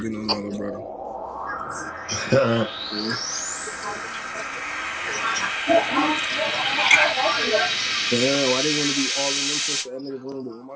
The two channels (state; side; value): identical; both; correlation 1.00